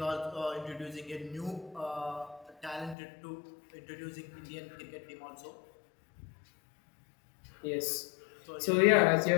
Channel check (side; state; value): right; drops out; at 3.0 s